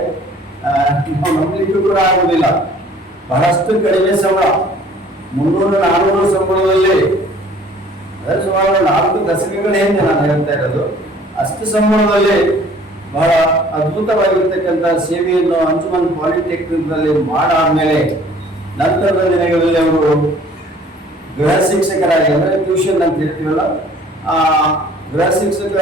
ನಾವು ನಂಬಲಿಕ್ಕೂ ಕೂಡ ಆಗುವುದಿಲ್ಲ. ಬಹಳಷ್ಟು ಕಡಿಮೆ ಸಂಬಳ, 300-400 ಸಂಬಳದಲ್ಲಿ, ಸುಮಾರು 4 ದಶಕಗಳ ಹಿಂದೆ ನಾನು ಹೇಳ್ತಾ ಇರೋದು. ಅಷ್ಟು ಸಂಬಳದಲ್ಲಿ ಬಹಳ ಅದ್ಭುತವಾಗಿರ್ತಕ್ಕಂಥ ಸೇವೆಯನ್ನು ಅಂಜುಮನ್ ಪಾಲಿಟೆಕ್ನಿಕ್ ನಲ್ಲಿ ಮಾಡಾದ್ಮೇಲೆ ನಂತರದ ದಿನಗಳಲ್ಲಿ ಅವರು ಗೃಹ ಶಿಕ್ಷಕರಾಗಿ, ಅಂದ್ರೆ ಟ್ಯೂಷನ್ ಅಂತ ಹೇಳ್ತೀವಲ್ಲ, ಆ ಗೃಹ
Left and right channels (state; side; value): normal; both; correlation 0.54